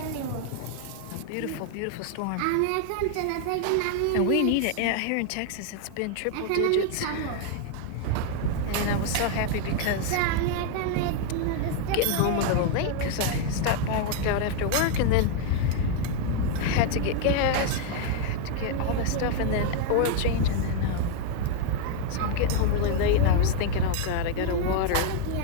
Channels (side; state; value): both; different; correlation 0.01